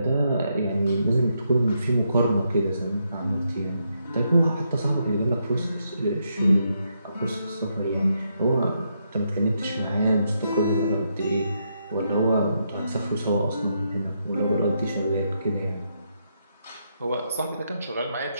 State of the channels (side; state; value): both; inverted; correlation -0.79